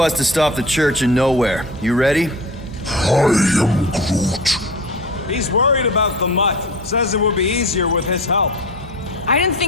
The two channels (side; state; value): both; normal; correlation 0.35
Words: to stop the church in nowhere. You ready? I am Groot. He's worried about the mutt. Says it would be easier with his help. I didn't